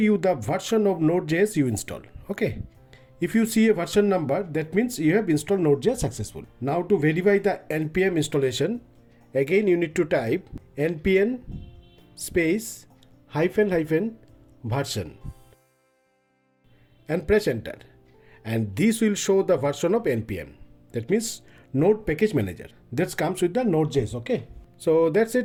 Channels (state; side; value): identical; both; correlation 1.00